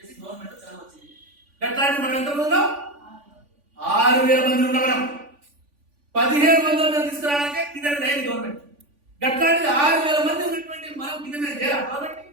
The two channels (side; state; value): left; late; 3.5 ms